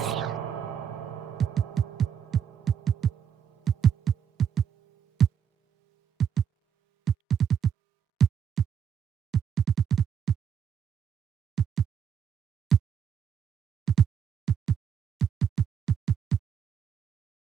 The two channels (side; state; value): left; quieter; 8.1 dB